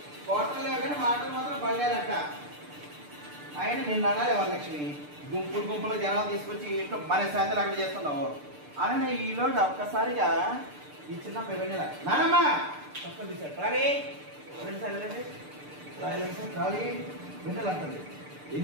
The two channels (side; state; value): left; late; 6.7 ms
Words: కోటలు కానీ మాటలు మాత్రం పడలేదంట. ఆయన నిన్ను అనాలి వరలక్ష్మి, గుంపులు గుంపులు జనాలు తీసుకొచ్చి ఇంట్లో మన శాంతి అక్కడ చేస్తున్నావు అని ఈలోజు ఒక్కసారిగా ఈ చిన్న పిల్లల నానమ్మ తప్పని తీశాడు రాలి రాలి విన్నలు అంటుంది.